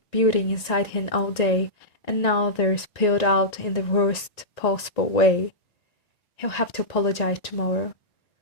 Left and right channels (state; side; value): late; right; 1.9 ms